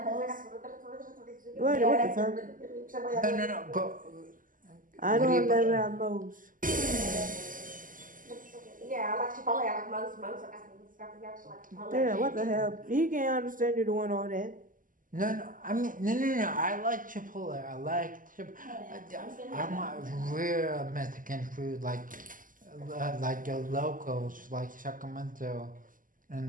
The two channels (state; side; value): late; left; 0.39 ms